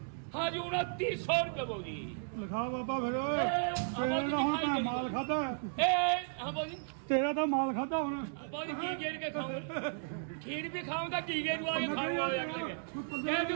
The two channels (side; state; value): left; silent; digital silence